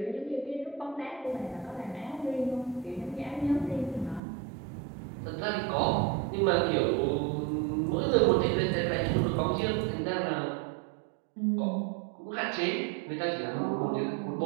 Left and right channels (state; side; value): drops out; left; at 4.2 s